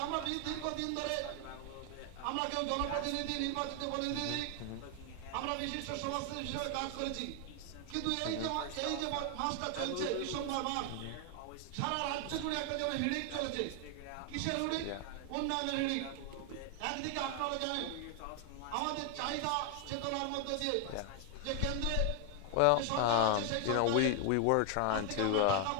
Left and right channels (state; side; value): different; both; correlation 0.00